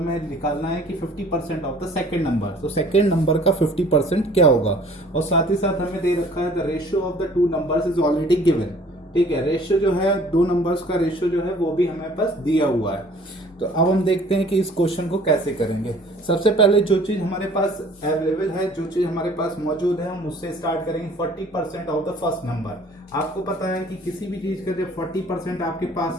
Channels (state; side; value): normal; both; correlation 0.53